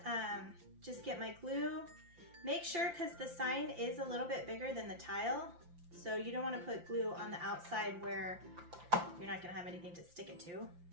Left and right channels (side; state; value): left; late; 5.8 ms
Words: just get my glue. Make sure, because the sign is a little bit bigger than the tile, so you don't wanna put glue on the outside where you're not gonna have anything to stick it to.